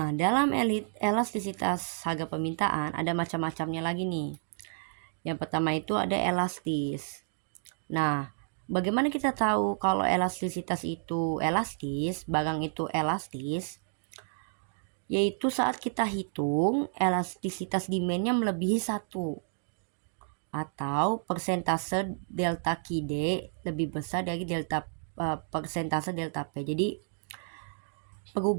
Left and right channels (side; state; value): left; silent; digital silence